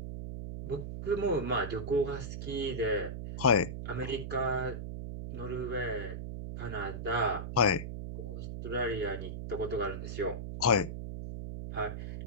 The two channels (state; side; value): noise; right; hum, 6 dB below the sound